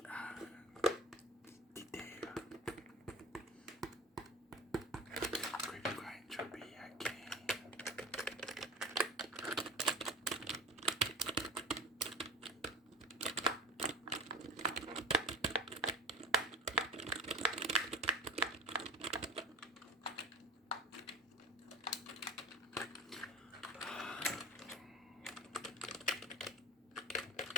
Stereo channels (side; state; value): both; normal; correlation 0.35